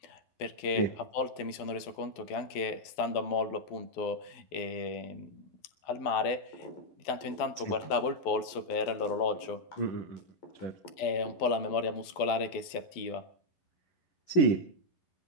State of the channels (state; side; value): late; right; 12 ms